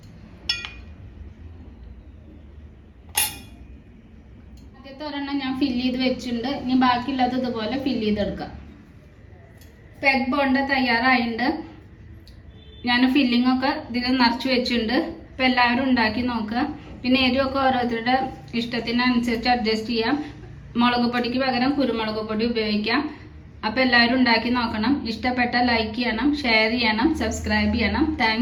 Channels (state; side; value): identical; both; correlation 1.00